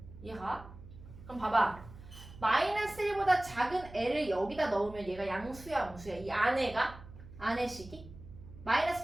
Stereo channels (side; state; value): right; noise; hum, 17 dB below the sound